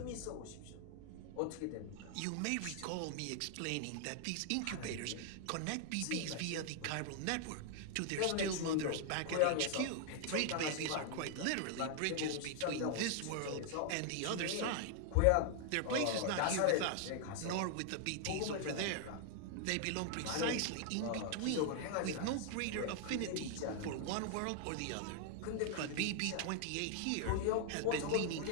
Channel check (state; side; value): different; both; correlation 0.00